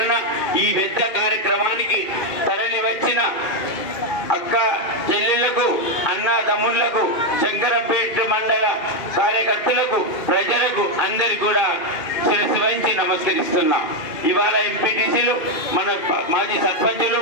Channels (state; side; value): late; right; 2.1 ms